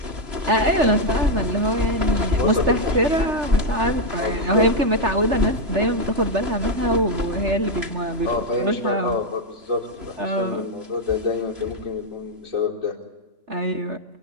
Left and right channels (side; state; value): left; late; 3.3 ms